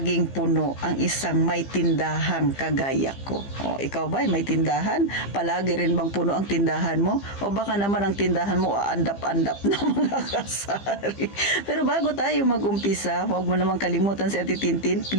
puno ang isang may tindahang kagaya ko? O, ikaw ba may tindahan? Palagi rin bang puno ang tindahan mo? O baka naman ang tindahan mo aandap-andap na mga kasari? Pero bago tayo mag-umpisa, huwag mo namang kalimutan si Ate Tintin.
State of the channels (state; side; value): late; right; 15 ms